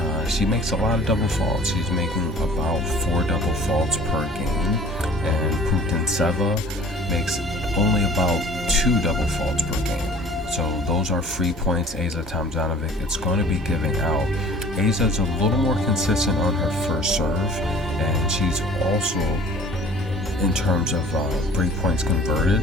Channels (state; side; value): normal; both; correlation 0.49